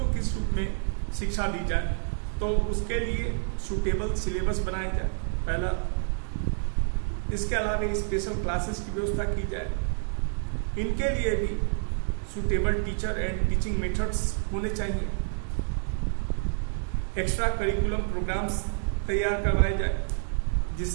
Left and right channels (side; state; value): left; silent; digital silence